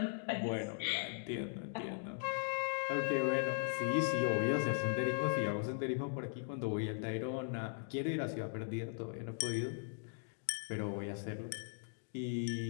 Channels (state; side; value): silent; right; digital silence